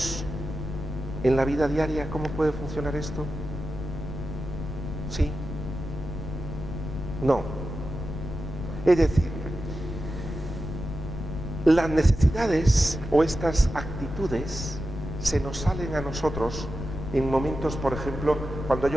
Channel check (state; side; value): noise; left; rumble, 7 dB below the sound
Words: en la vida diaria cómo puede funcionar esto? ¿Sí? No. Es decir, las necesidades o estas actitudes se nos salen a nosotros en momentos, por ejemplo, cuando